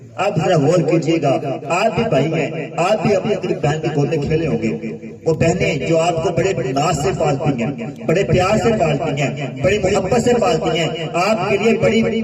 آپ ذرا غور کیجیے گا، آپ بھی بھائی ہیں، آپ بھی اپنی بہن کی گود میں کھیلے ہوں گے. وہ بہنیں جو آپ کو بڑے ناز سے پالتی ہیں، بڑے پیار سے پالتی ہیں، بڑی محبت سے پالتی ہیں، آپ کے لیے بڑی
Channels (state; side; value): identical; both; correlation 1.00